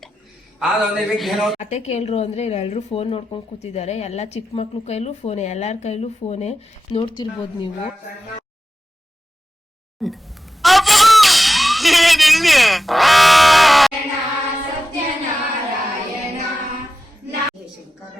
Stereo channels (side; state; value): both; normal; correlation 0.92